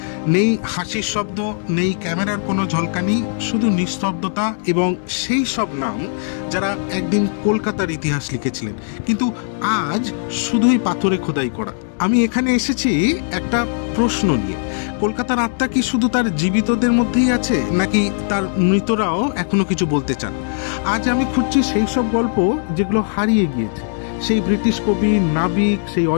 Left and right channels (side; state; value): right; silent; digital silence